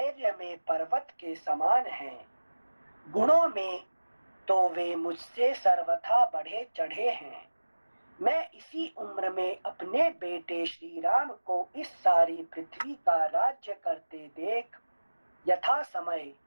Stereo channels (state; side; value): inverted; both; correlation -1.00